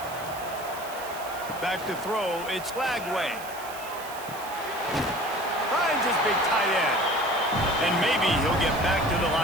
Back to throw, it's Lagway. Finds his big tight end. And maybe he'll get back to the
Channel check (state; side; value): noise; right; hiss, 15 dB below the sound